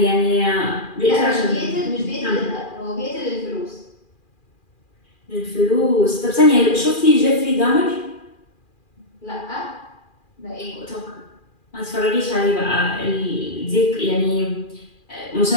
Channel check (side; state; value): right; late; 2.4 ms